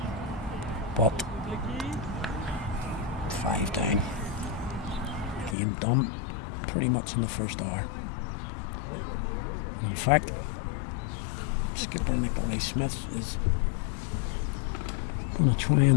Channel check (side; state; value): right; drops out; at 5.6 s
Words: But 5 down. Game done pretty much in the first hour. In fact, skipper Nikolai Smith is going to try